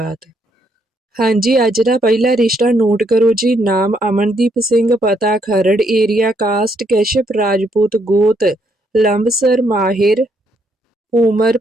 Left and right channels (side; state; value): both; normal; correlation 0.73